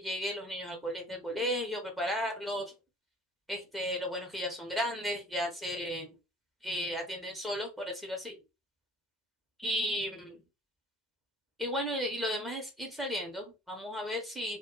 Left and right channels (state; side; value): normal; both; correlation 0.50